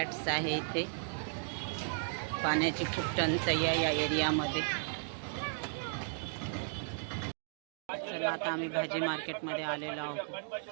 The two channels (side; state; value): left; silent; digital silence